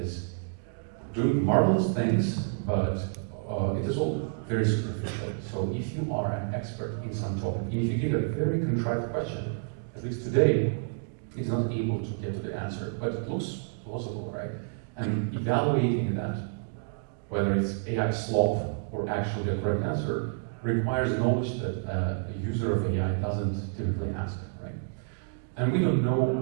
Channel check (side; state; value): left; silent; digital silence